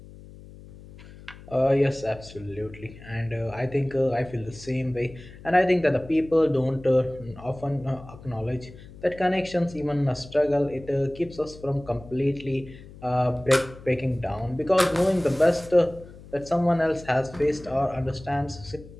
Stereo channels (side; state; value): left; noise; hum, 18 dB below the sound